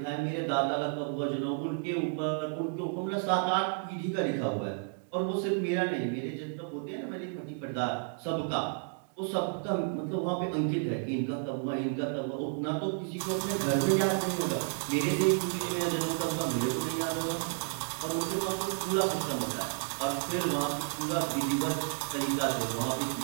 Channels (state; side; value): silent; left; 57 dB below the other